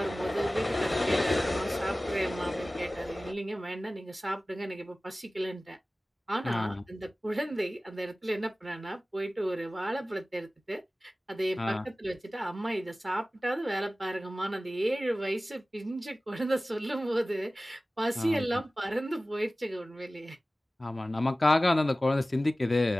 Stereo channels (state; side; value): normal; both; correlation 0.97